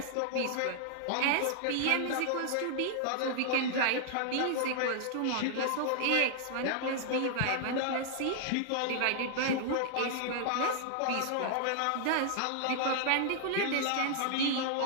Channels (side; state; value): both; different; correlation 0.00